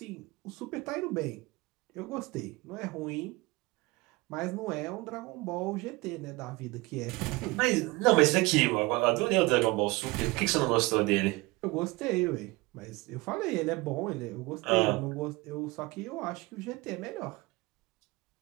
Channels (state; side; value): quieter; left; 22.9 dB